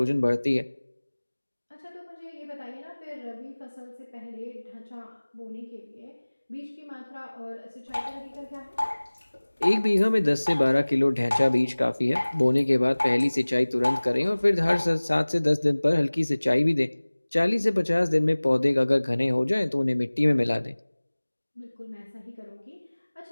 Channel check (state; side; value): inverted; both; correlation -1.00